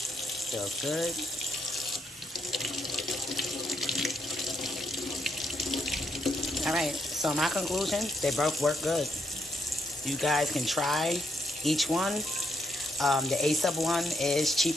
Feels good. Alright, so my conclusion, they both work good. You guys can try each one. The A-Sub one is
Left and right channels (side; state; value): both; normal; correlation 0.79